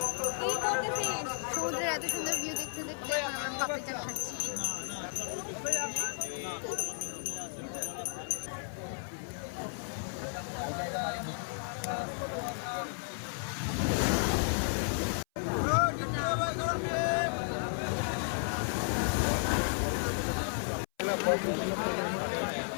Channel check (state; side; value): silent; right; 55 dB below the other